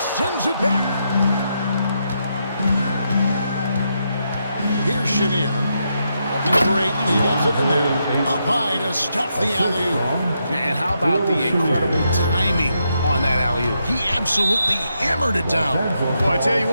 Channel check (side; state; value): both; inverted; correlation -0.81